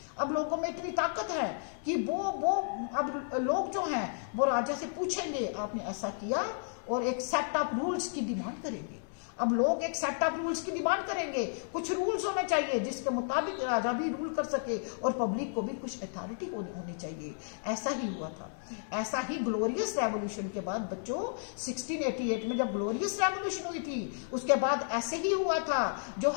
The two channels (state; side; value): silent; right; 56 dB below the other